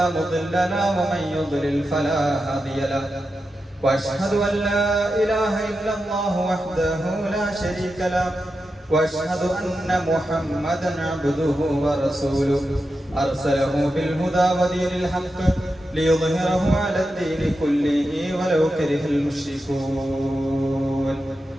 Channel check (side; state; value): both; normal; correlation 0.89